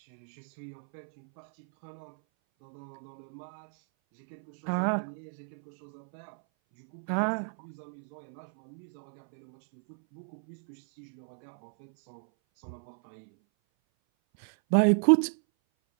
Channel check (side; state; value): left; silent; 56 dB below the other